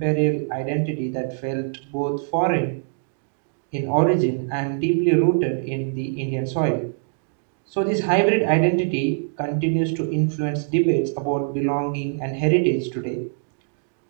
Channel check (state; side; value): silent; left; digital silence